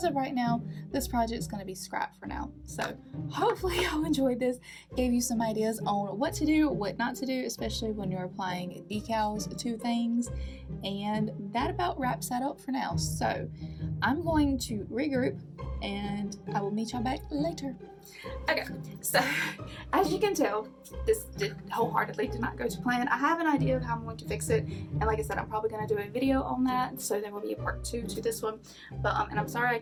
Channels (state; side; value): identical; both; correlation 1.00